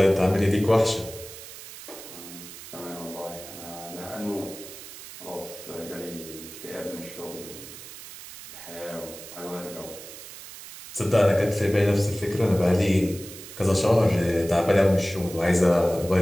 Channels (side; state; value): right; noise; hiss, 14 dB below the sound